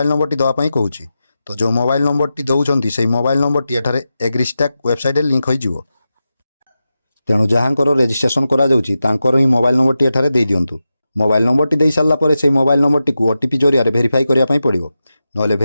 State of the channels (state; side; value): inverted; both; correlation -0.91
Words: नंबर टी दवाई कहूँ। तो जो मोबाइल नंबर टी दौरान से मोबाइल नंबर टी एठारे एग्रीस्टैक वेबसाइट लिंक हो तेणु जहाँकर रेजिस्ट्रेशन करा जाउछि तांकर ही मोबाइल नंबर टी एठारे दे दियंतु। मोबाइल नंबर टी दे सारा पर से मोबाइल नंबर टी को ओटीपी जरिया वेरीफाई करिया पई पड़िबो नले